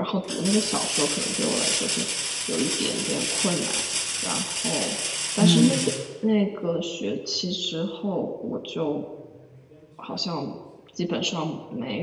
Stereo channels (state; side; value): identical; both; correlation 1.00